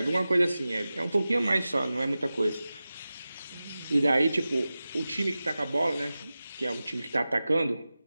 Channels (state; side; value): inverted; both; correlation -0.95